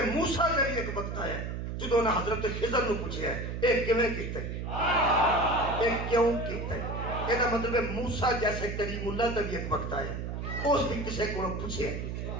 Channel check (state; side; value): noise; right; hum, 5 dB below the sound